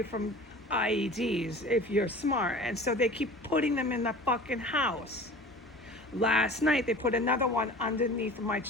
from IEDs if you're smart. And so they keep putting them in the fucking house. Last night they put another one underneath my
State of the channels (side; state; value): both; normal; correlation 0.41